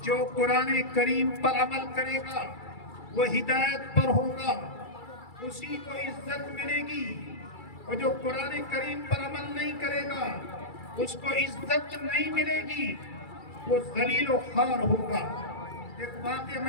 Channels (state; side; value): late; right; 2.3 ms